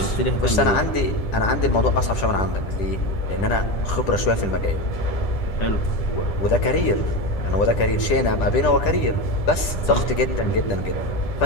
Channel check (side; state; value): right; late; 10 ms